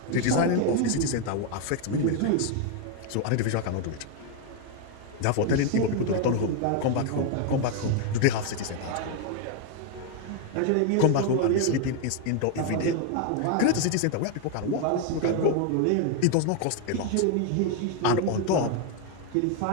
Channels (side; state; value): both; different; correlation 0.01